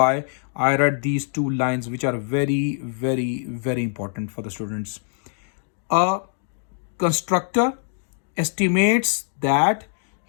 I read these two lines, which are very, very, very important for the students. A constructor estimates that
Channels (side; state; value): right; silent; digital silence